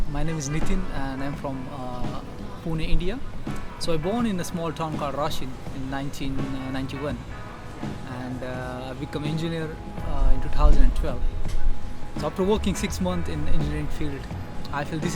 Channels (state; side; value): identical; both; correlation 1.00